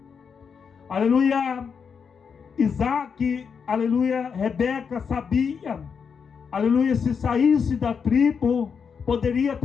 Aleluia. Isaac, aleluia, Rebeca sabia, aleluia, se saísse da tribo, poderia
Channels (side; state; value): right; quieter; 6.3 dB